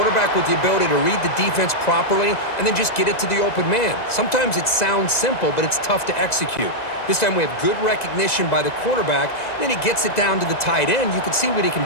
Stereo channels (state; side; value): late; right; 2.0 ms